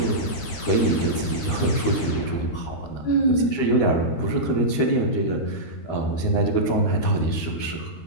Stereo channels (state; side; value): late; right; 12 ms